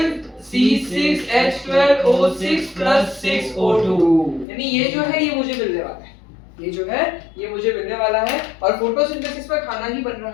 C6H12O6 + 6O2, यानी ये जो है ये मुझे मिलने वाला है, ये जो है ये मुझे मिलने वाला है। और फोटोसिंथेसिस में खाना ही बन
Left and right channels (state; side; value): drops out; right; at 4.5 s